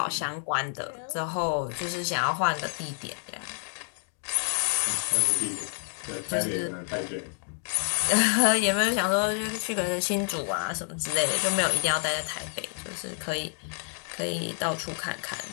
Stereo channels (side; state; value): right; silent; 59 dB below the other